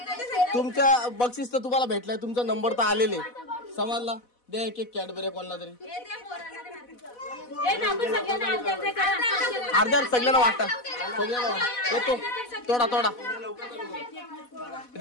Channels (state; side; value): late; right; 4.1 ms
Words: तुमच्या बक्षीस तर तुम्हाला भेटलंय. तुमचा नंबर तर आलेले समजला. दे एक कॅडबरी कोणाला तरी. अर्ध्या सगळ्यांना वाटत. येतो तोडा